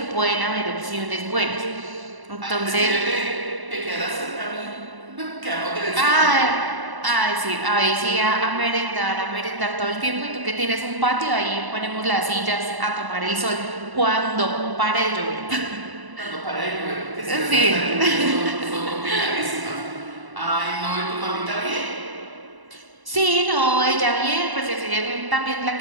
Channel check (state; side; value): late; left; 1.0 ms